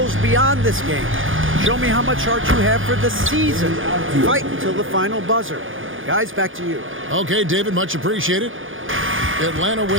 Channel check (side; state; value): left; late; 0.58 ms